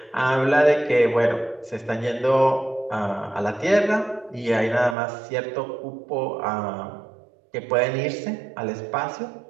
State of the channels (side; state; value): left; drops out; at 5.0 s